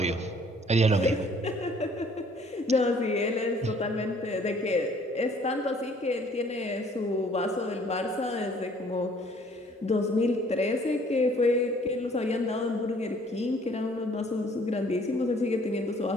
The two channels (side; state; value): both; normal; correlation 0.58